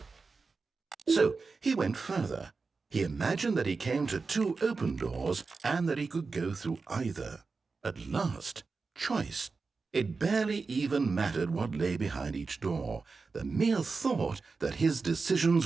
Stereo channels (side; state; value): left; quieter; 4.4 dB